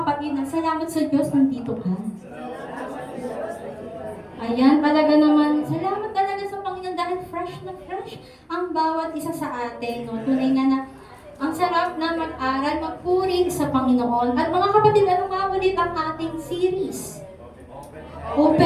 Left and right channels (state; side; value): identical; both; correlation 1.00